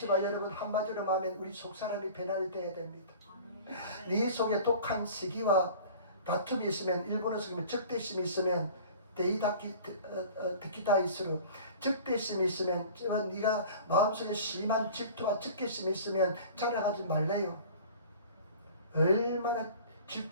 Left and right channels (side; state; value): both; inverted; correlation -0.43